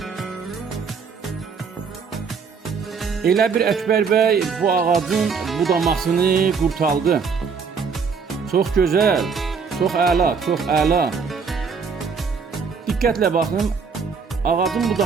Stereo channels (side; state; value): left; quieter; 5.6 dB